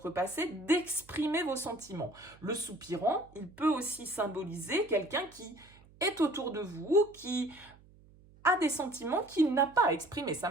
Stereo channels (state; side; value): noise; right; hum, 25 dB below the sound